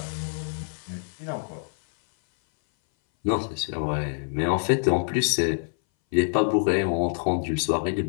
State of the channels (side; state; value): right; silent; 59 dB below the other